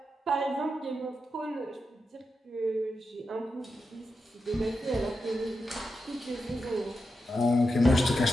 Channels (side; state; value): both; normal; correlation 0.88